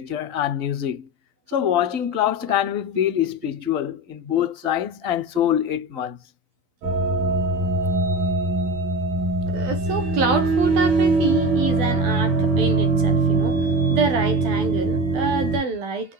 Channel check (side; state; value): left; late; 12 ms